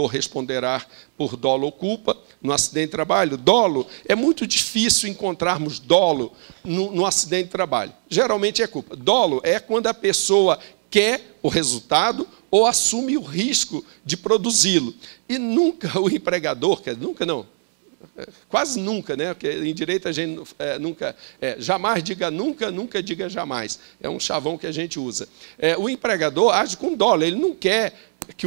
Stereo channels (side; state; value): left; silent; 61 dB below the other